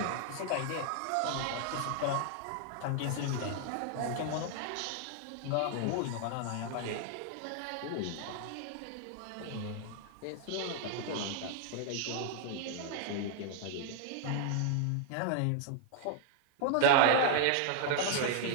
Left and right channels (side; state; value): both; different; correlation 0.00